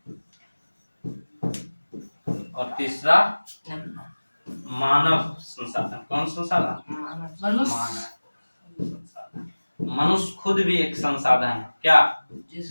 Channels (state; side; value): inverted; both; correlation -1.00